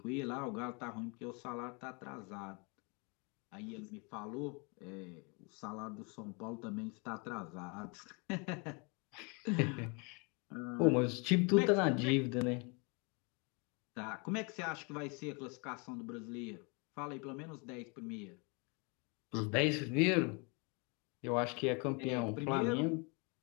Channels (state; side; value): quieter; right; 32.4 dB